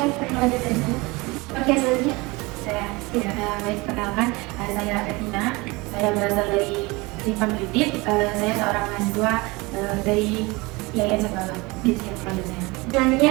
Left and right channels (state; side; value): quieter; left; 24.2 dB